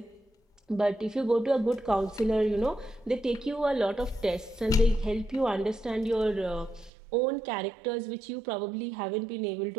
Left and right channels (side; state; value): left; drops out; at 6.9 s